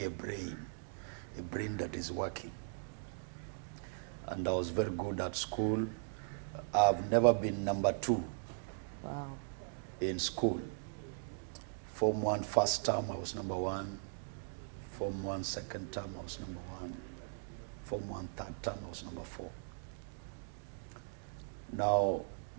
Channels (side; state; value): left; silent; digital silence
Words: a brain that is working. And I was very good at school. I've never been number 2 in school. Form 1 first term, I was number 1. Form 1 second term, I was number 1. Form 1 third term, I was number 4. Now,